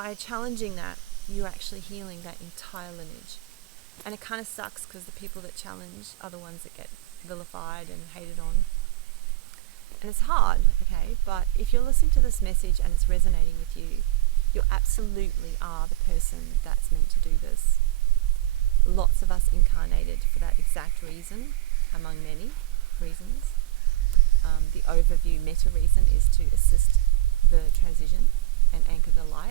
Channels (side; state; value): left; quieter; 17.3 dB